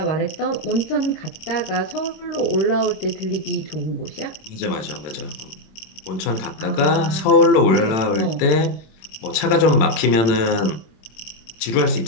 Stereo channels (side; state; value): right; late; 27 ms